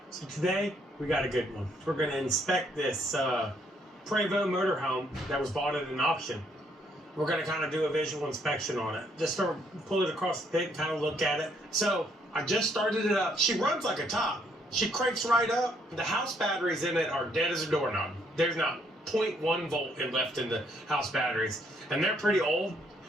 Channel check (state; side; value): normal; both; correlation 0.69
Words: so today we got a good one. We're going to inspect this Prevost motorhome that was bought at an auction. We're going to kind of do a visual inspection on it. Just to pull it across the pit and kind of look at it. So I just started it up. She runs like a top. She cranks right up. The house batteries in it are dead as a doorknob. There's not 0.1 volt left in the house batteries. And they're pretty old.